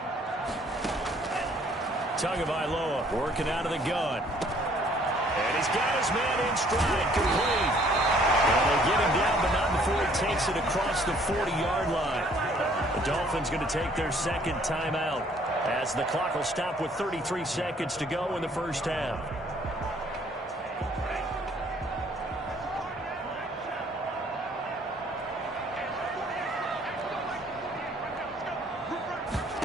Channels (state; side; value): normal; both; correlation 0.60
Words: Tagovailoa working out of the gun. And he's got his man in stride, complete. And they get him down, but not before he takes it across the 40-yard line. The Dolphins going to take their 2nd timeout as the clock will stop with 33 seconds to go in the first half.